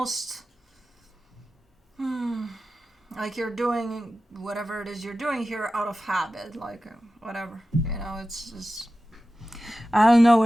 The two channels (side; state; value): both; normal; correlation 0.93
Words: like you're doing whatever it is you're doing here out of habit. Like whatever, you know, it's just, I don't know